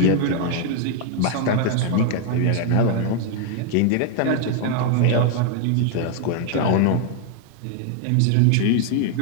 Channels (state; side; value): different; both; correlation 0.00